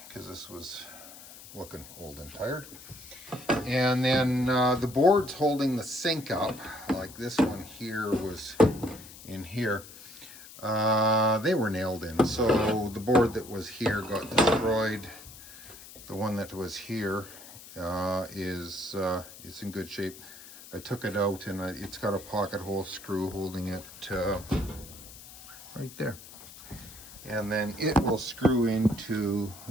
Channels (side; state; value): left; noise; hiss, 17 dB below the sound